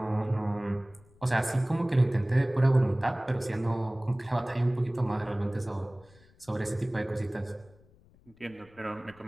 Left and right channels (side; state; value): left; noise; rumble, 28 dB below the sound